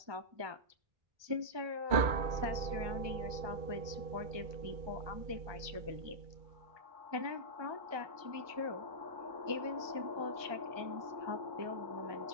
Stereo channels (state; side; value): late; left; 1.2 ms